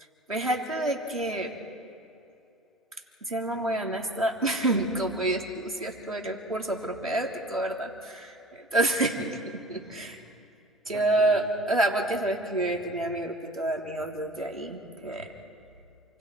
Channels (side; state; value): both; normal; correlation 0.41